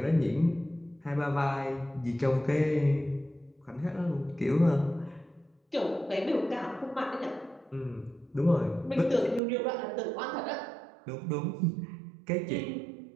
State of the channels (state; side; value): drops out; left; at 9.4 s